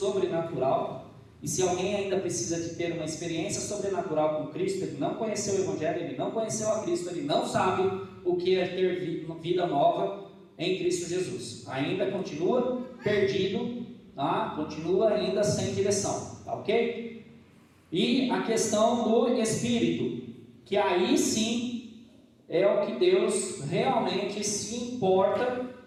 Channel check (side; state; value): both; identical; correlation 1.00